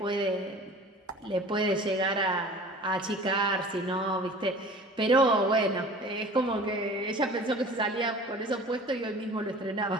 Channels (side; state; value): both; normal; correlation 0.43